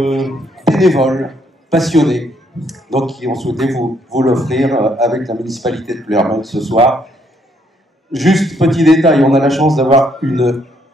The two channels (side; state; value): both; normal; correlation 0.70